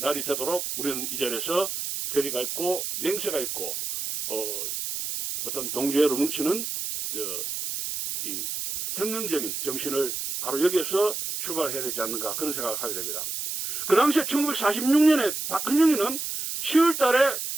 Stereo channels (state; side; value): noise; right; hiss, 4 dB below the sound